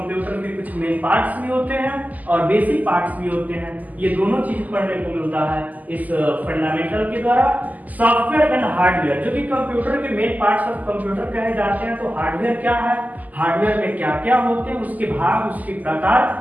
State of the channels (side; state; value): left; late; 0.080 ms